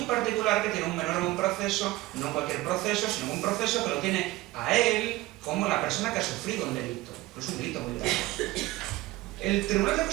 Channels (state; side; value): quieter; left; 18.8 dB